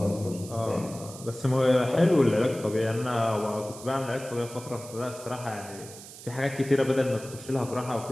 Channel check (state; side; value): noise; right; hiss, 15 dB below the sound